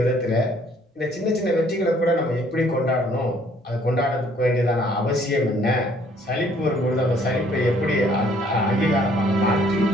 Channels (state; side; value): normal; both; correlation 0.61